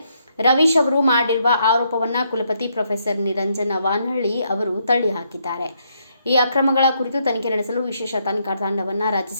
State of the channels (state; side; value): inverted; both; correlation -0.75